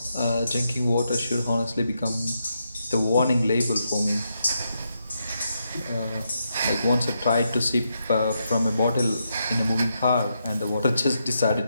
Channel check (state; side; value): inverted; both; correlation -0.82